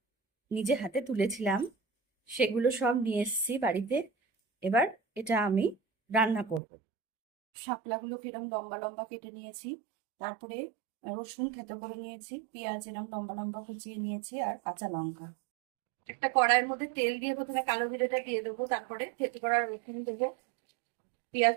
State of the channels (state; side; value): drops out; left; at 6.6 s